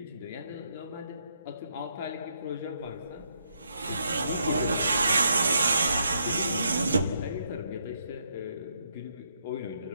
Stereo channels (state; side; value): inverted; both; correlation -0.76